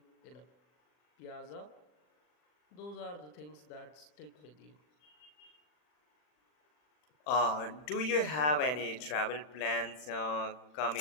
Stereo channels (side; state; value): right; late; 40 ms